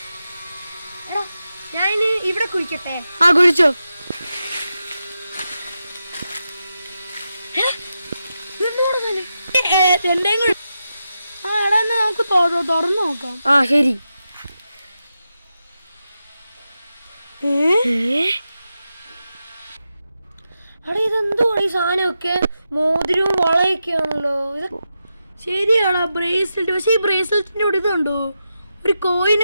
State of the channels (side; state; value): both; inverted; correlation -0.89